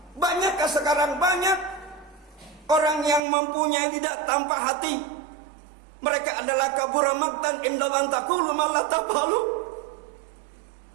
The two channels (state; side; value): drops out; left; at 3.2 s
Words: Banyakkah sekarang? Banyak orang yang mempunyai lidah tanpa hati. Mereka adalah kabura maqtan inda man taqulu ma la taf'alu.